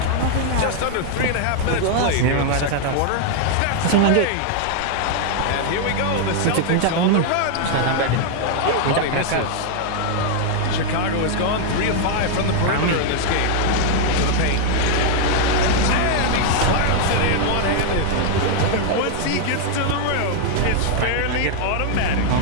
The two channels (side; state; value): both; different; correlation 0.00